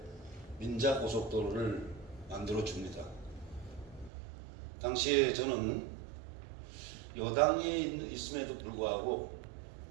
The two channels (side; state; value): left; drops out; at 4.1 s